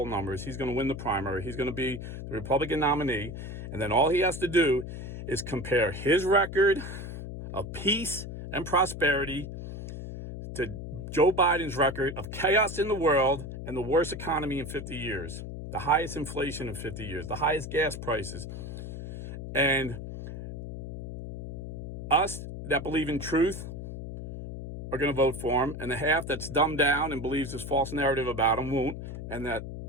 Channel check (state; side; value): noise; left; hum, 8 dB below the sound